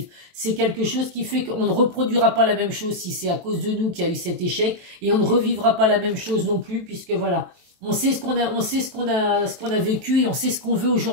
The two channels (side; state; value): left; late; 23 ms